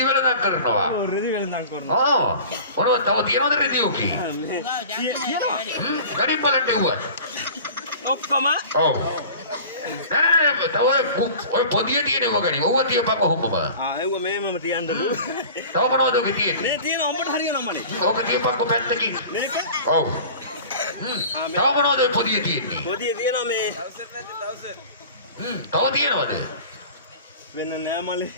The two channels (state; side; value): inverted; both; correlation -0.40